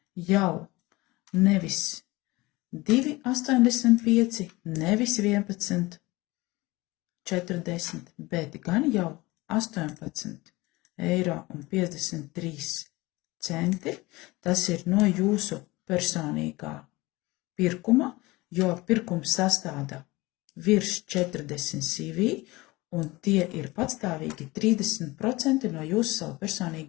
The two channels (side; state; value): right; quieter; 21.4 dB